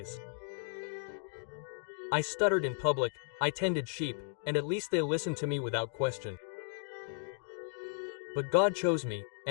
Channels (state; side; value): silent; right; digital silence